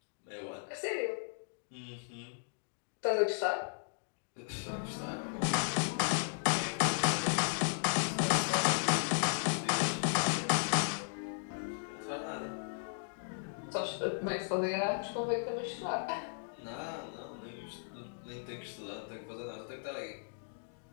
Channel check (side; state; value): right; silent; digital silence